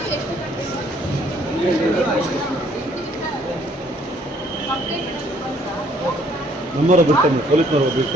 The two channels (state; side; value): normal; both; correlation 0.63